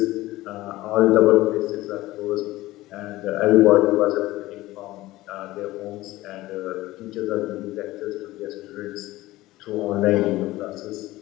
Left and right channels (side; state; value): right; quieter; 17.7 dB